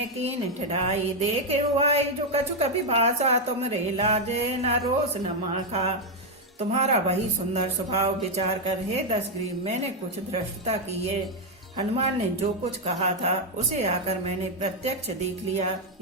कीन ठिठाई, देखे हुआई जो कछु कभी भाषा, तुम रे लाजे न रोस न माखा। तुम्हारा वही सुंदर स्वभाव विचार कर हे दशग्रीव, मैंने कुछ धृष्टता की है। हनुमान ने जो कुछ कहा था उसे आकर मैंने प्रत्यक्ष देख लिया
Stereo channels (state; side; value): normal; both; correlation 0.02